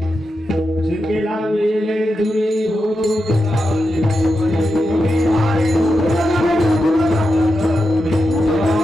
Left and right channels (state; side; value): normal; both; correlation 0.88